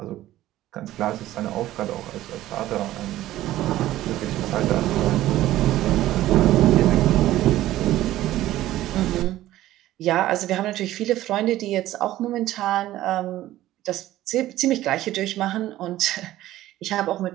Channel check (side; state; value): left; quieter; 14.7 dB